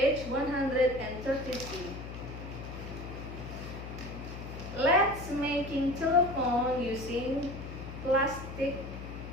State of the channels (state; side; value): noise; left; hum, 10 dB below the sound